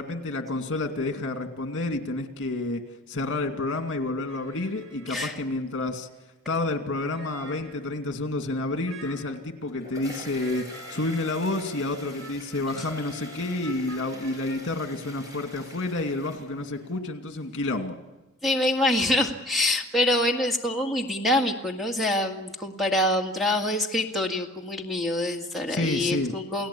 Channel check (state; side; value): normal; both; correlation 0.43